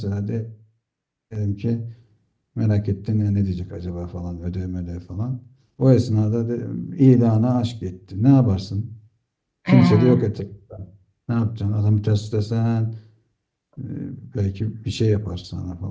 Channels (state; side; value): identical; both; correlation 1.00